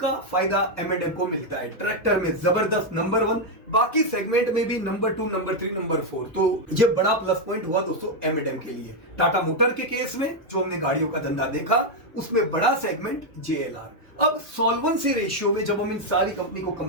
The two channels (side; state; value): both; normal; correlation 0.02